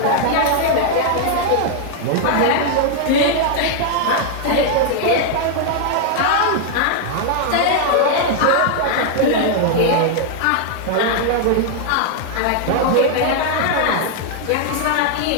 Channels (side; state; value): both; different; correlation 0.00